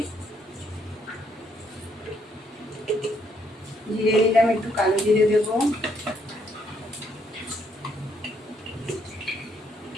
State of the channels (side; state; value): both; normal; correlation 0.71